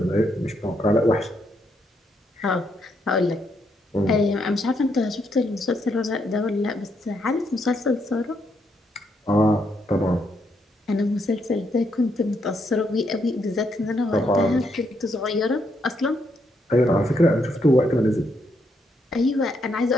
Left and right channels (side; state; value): both; normal; correlation 0.77